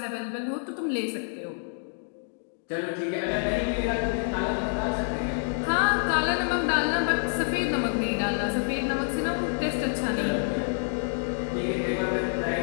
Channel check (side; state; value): right; silent; 59 dB below the other